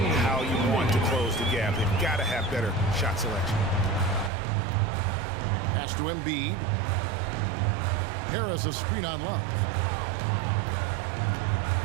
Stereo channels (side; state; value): left; drops out; at 4.3 s